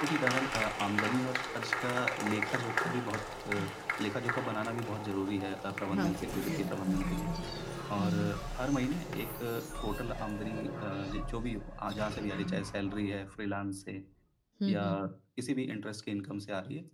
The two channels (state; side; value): identical; both; correlation 1.00